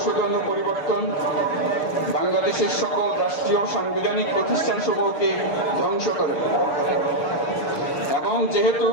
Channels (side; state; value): right; late; 6.6 ms